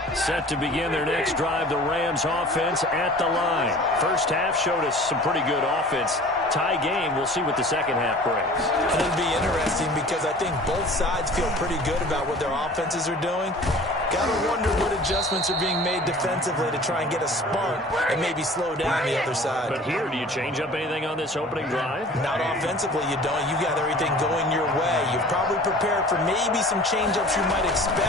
Set to begin their next drive, the Rams offense at the line. First half showed us some pretty good offense. Tie game, we'll see what the second half brings. It'll be interesting because I think both sides feel pretty good about what their offenses are doing. Gotta wonder what adjustments are being made defensively to try and get a spark and maybe slow down the other side. But here, do you change up anything on this opening drive? Not offensively, you don't. You got everything going your way. You've probably prepared for maybe some change-ups you might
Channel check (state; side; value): normal; both; correlation 0.45